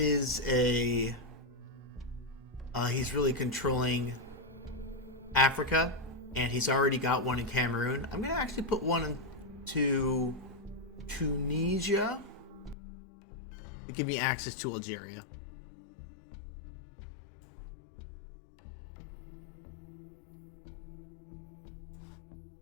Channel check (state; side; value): drops out; right; at 12.8 s